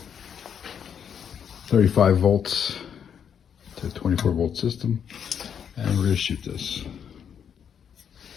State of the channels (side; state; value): right; quieter; 8.0 dB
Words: 35 volts to 24 volt system, and we're going to shoot this.